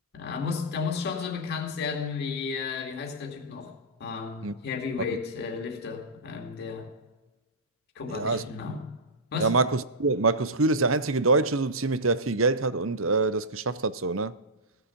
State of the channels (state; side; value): normal; both; correlation -0.14